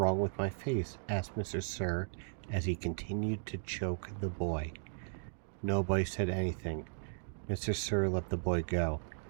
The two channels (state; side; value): silent; left; digital silence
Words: with my face?" asked Mr. Sir as he continued to choke the boy. Nobody said anything. Mr. Sir let the boy go.